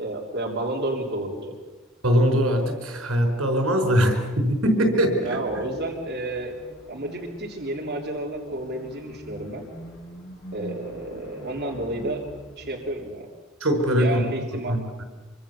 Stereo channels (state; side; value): normal; both; correlation 0.45